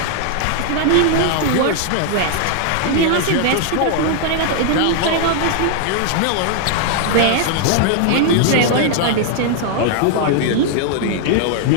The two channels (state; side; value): different; both; correlation 0.00